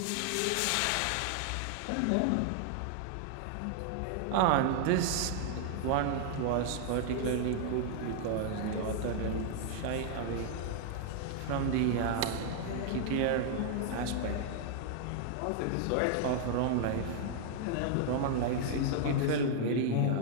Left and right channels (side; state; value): both; different; correlation 0.00